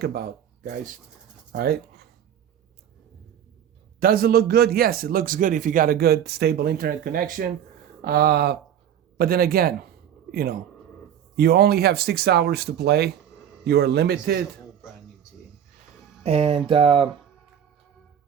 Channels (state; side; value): quieter; left; 9.5 dB